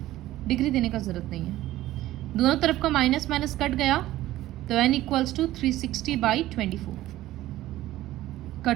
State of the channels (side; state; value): left; quieter; 15.2 dB